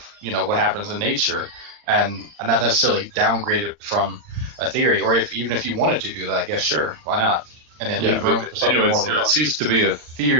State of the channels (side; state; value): left; late; 40 ms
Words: what happens in nature, and not necessarily downgrade it from a theory. Or even if you wanted to do that, I guess sure, why not? And then leave room for something more. It ceased to be a